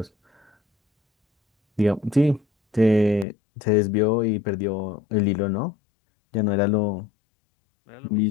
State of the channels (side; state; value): right; drops out; at 3.2 s